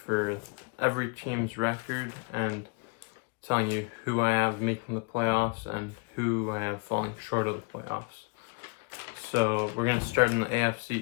for every team's record and telling you who I have making the playoffs and who I have falling short of the playoffs. So we're going to start in the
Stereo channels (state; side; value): quieter; right; 31.7 dB